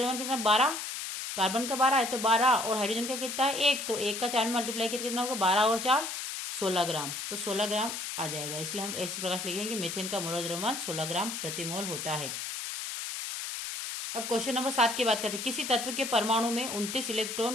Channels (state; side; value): noise; left; hiss, 5 dB below the sound